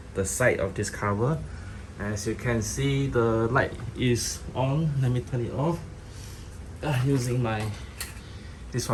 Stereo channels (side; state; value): both; identical; correlation 1.00